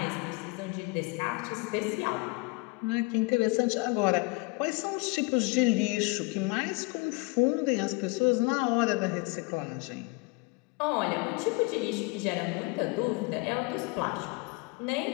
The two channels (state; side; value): quieter; right; 26.3 dB